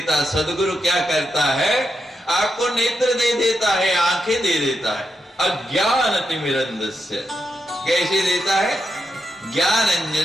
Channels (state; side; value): normal; both; correlation 0.85